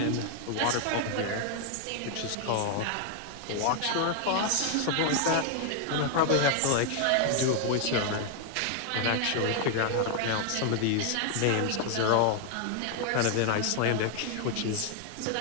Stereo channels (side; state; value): both; different; correlation 0.00